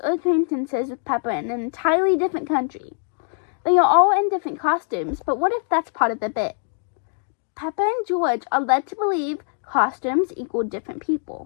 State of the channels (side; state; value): right; silent; 64 dB below the other